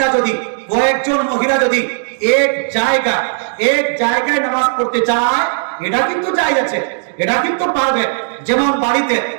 যদি, কয়েকজন মহিলা যদি এক জায়গায় নামাজ পড়তে চায়, এটা কিন্তু জায়েজ আছে, এটা কিন্তু পারবে। যেমন বাড়িতে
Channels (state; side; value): silent; left; digital silence